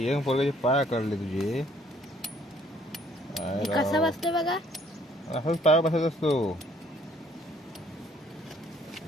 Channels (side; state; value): both; normal; correlation 0.62